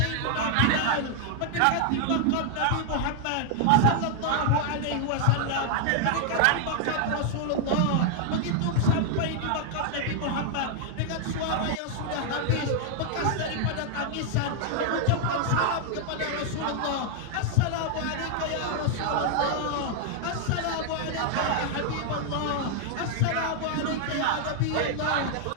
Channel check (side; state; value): both; different; correlation 0.00